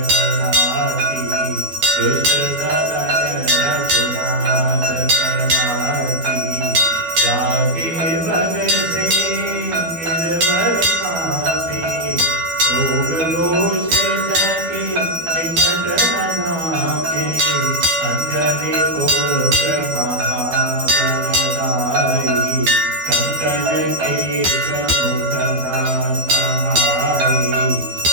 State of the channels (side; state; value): left; late; 12 ms